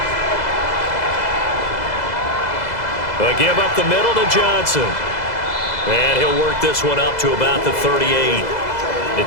They'll give up the middle to Johnson. And he'll work this one up to about the 38.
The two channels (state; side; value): late; right; 2.0 ms